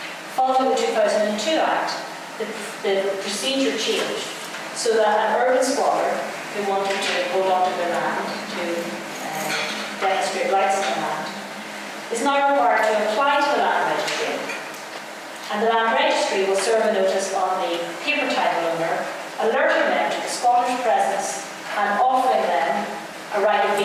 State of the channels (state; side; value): identical; both; correlation 1.00